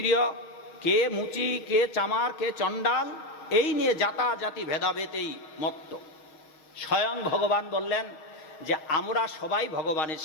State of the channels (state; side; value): late; right; 6.5 ms